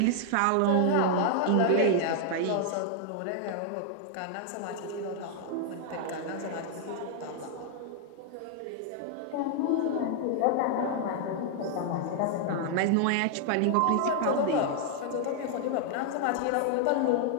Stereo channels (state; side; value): different; both; correlation 0.00